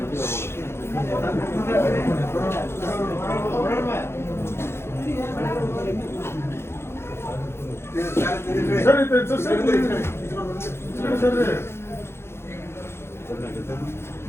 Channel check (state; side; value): late; right; 0.12 ms